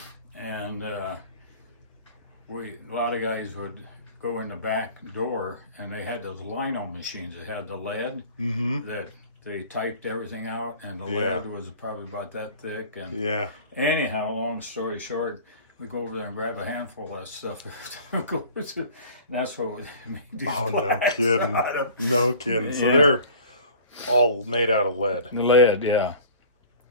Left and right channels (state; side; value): inverted; both; correlation -0.44